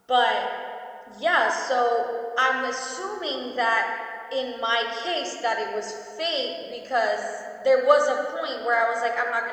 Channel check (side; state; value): both; identical; correlation 1.00